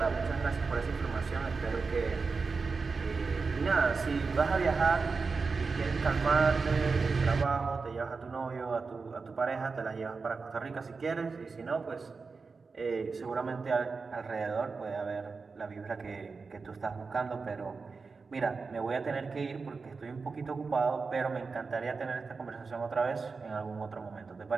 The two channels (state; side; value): quieter; left; 4.6 dB